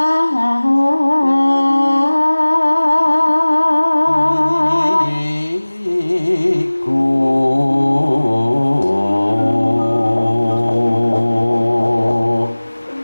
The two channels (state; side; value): inverted; both; correlation -1.00